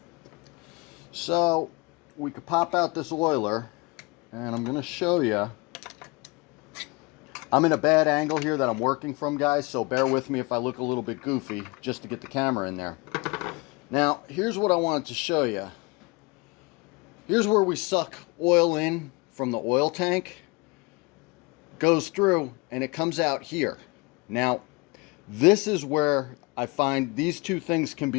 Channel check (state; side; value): quieter; right; 26.7 dB